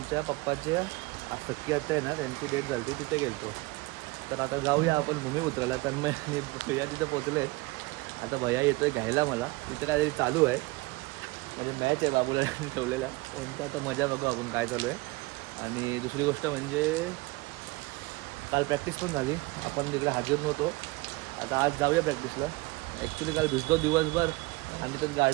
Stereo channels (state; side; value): quieter; left; 23.0 dB